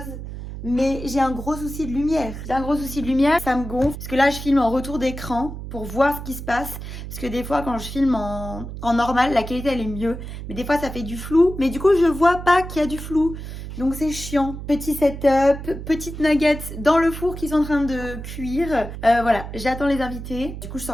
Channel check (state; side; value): noise; right; hum, 9 dB below the sound